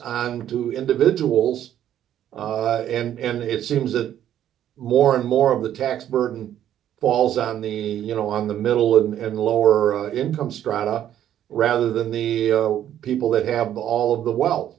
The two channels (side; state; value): left; quieter; 11.1 dB